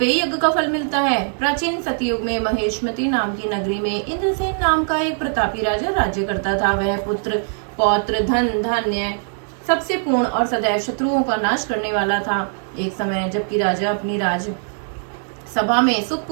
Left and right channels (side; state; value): left; silent; digital silence